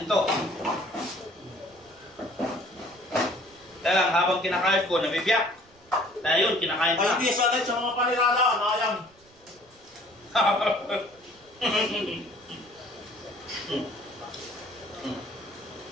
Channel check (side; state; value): right; noise; rumble, 29 dB below the sound